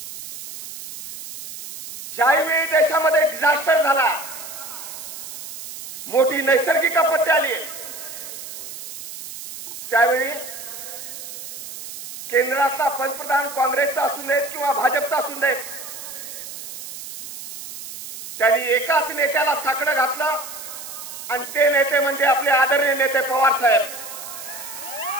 ज्यावेळी देशामध्ये डिझास्टर झाला, मोठी नैसर्गिक आपत्ती आली, त्यावेळी केंद्रातला पंतप्रधान काँग्रेसचा असू देत किंवा भाजपचा असू देत, त्यांनी एकाच नेत्याला साकडं घातलं आणि ते नेते म्हणजे आपले आदरणीय नेते पवार साहेब.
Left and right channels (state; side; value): noise; right; hiss, 11 dB below the sound